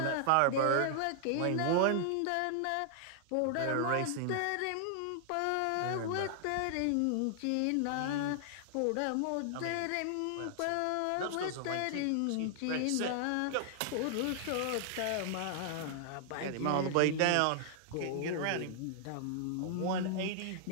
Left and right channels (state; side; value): different; both; correlation -0.01